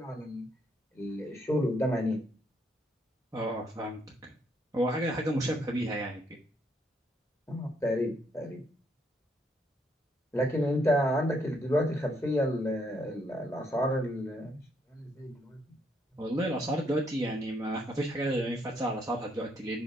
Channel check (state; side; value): normal; both; correlation 0.72